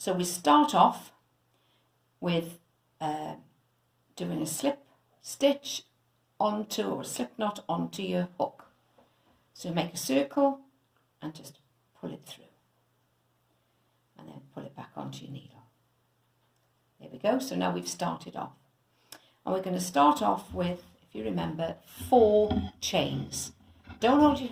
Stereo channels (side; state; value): both; identical; correlation 1.00